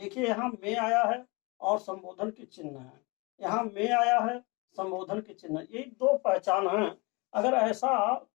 यहाँ में आया है और संबोधन के चिन्ह है, यहाँ में आया है, संबोधन के चिन्ह, ये 2 पहचान है। अगर ऐसा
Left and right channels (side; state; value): right; quieter; 27.4 dB